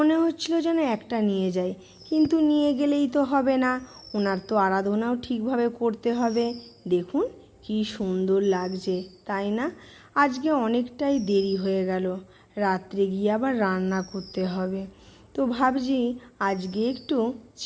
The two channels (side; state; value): both; identical; correlation 1.00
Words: হচ্ছিল যেন একটা নিয়ে যাই। কিন্তু নিয়ে গেলেই তো হবে না, ওনার তো আরাধনাও ঠিকভাবে করতে হবে। দেখুন কি সুন্দর লাগছে, তাই না? আজকে অনেকটাই দেরি হয়ে গেল, রাত্রে গিয়ে আবার রান্না করতে হবে। তো ভাবছি আজকে একটু